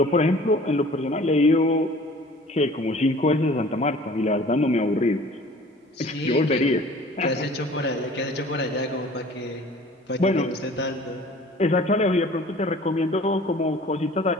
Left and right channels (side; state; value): both; normal; correlation 0.48